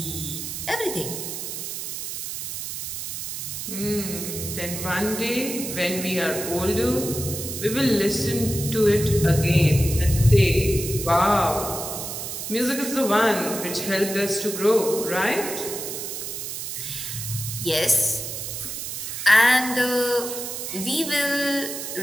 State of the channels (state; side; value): noise; right; hiss, 6 dB below the sound